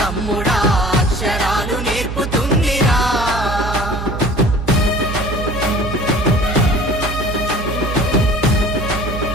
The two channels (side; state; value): right; noise; hum, 6 dB below the sound